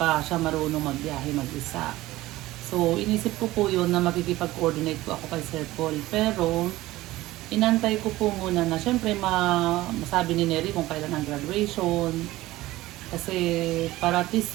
siya marunong magbiyahe mag-isa. So, inisip ko po yun na makikipag-coordinate po ako kay Sir Paul. Pero, inantay ko po muna na syempre masabi ni Neri kung kailan ang graduation. Kasi para at least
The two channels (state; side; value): quieter; left; 17.4 dB